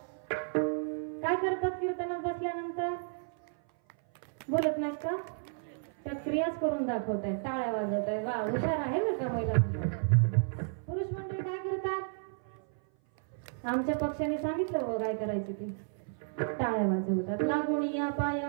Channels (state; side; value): silent; left; 56 dB below the other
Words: काय करतात कीर्तनात बसल्यानंतर? बोलत नाहीत का? त्या क्रियाच करून दाखवत आहेत, टाळ्या वाजवत आहेत. वा, हुशार आहे बरं का महिला. पुरुष मंडळी काय करतात? आमच्या पक्षाने सांगितलं हो काय करायचं ते. टाळ्या वाजवतात. लागून या